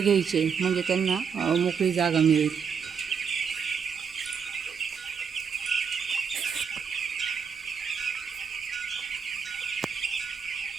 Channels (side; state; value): left; quieter; 6.5 dB